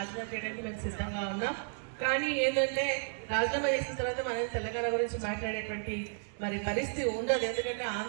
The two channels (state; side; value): silent; left; digital silence